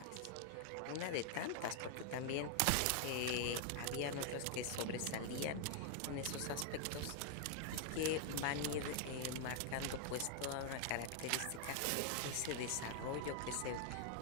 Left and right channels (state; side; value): different; both; correlation 0.00